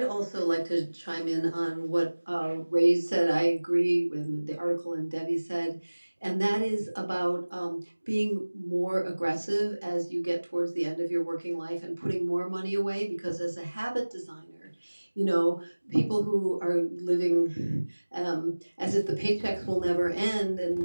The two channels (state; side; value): inverted; both; correlation -1.00